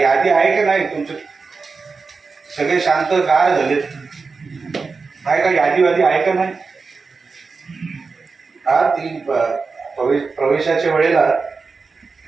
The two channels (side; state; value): left; quieter; 4.5 dB